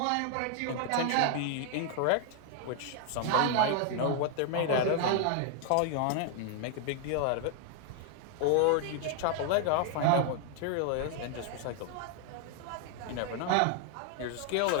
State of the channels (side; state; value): both; different; correlation 0.00